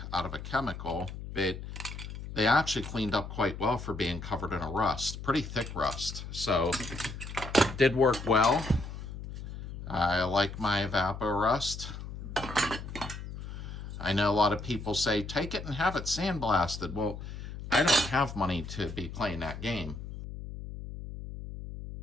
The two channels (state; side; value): noise; left; hum, 9 dB below the sound